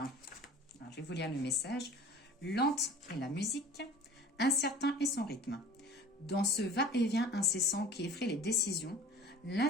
je vais vous lire le message. Lente est la musique, incertain est son rythme. Dans ce va-et-vient incessant qui effraie les décisions,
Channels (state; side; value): normal; both; correlation 0.43